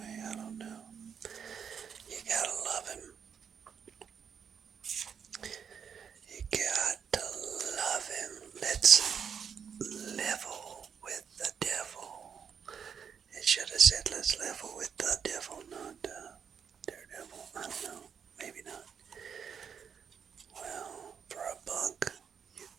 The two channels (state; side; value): quieter; left; 7.2 dB